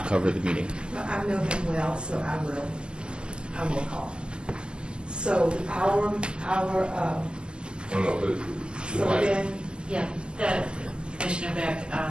cover the meeting. Well, I know him well, so I will call. So so then, Yeah, Commissioner Beck,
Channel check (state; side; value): late; left; 0.053 ms